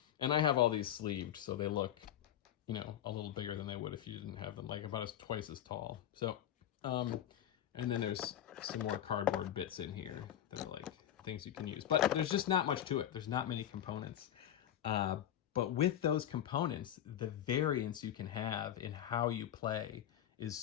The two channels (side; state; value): right; quieter; 10.9 dB